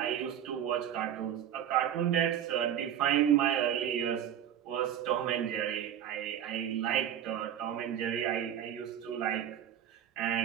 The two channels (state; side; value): quieter; left; 9.9 dB